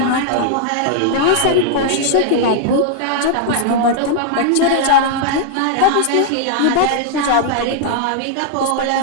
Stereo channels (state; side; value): different; both; correlation -0.01